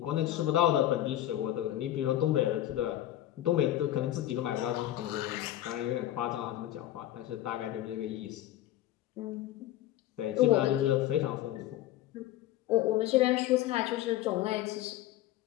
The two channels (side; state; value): right; quieter; 13.5 dB